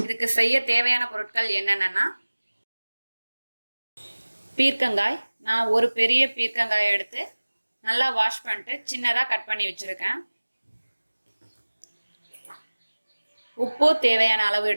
செய்ய தேவையான பொருட்கள் என்னென்னா, பீர்க்கங்காய் நான் ஒரு பெரிய பீர்க்கங்காயை எடுத்து நல்லா வாஷ் பண்ணிட்டு சின்னதாக கட் பண்ணி வச்சுருக்கேன். உப்பு தேவையான அளவு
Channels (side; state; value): both; inverted; correlation -1.00